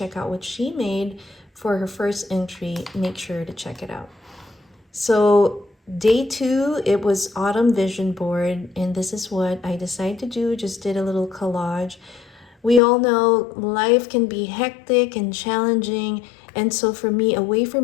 out what she made for her first entry, make sure to check it out. So day 2, it was autumn vision board, and this is what I decided to do. Just did a little collage. We all know life can be hectic and challenging, and so for me, a way for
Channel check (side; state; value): right; drops out; at 12.8 s